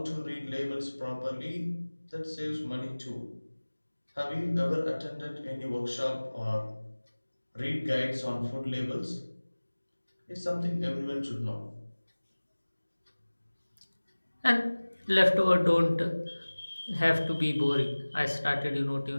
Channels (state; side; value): inverted; both; correlation -1.00